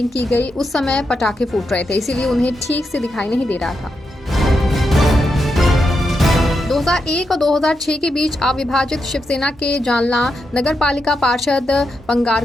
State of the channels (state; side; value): normal; both; correlation 0.85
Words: की गई उस समय पटाखे फूट रहे थे, इसीलिए उन्हें ठीक से दिखाई नहीं दे रहा था। 2001 और 2006 के बीच अविभाजित शिवसेना के जालना नगर पालिका पार्षद